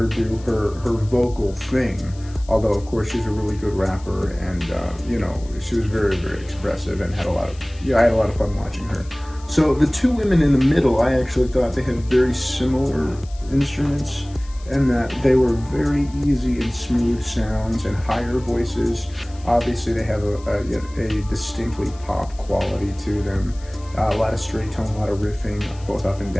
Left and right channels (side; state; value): left; noise; hiss, 24 dB below the sound